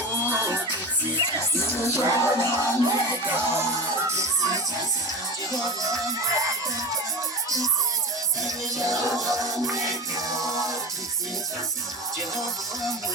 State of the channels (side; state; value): both; normal; correlation 0.27